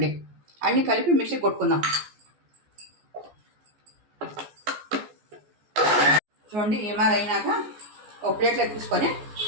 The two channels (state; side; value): late; left; 14 ms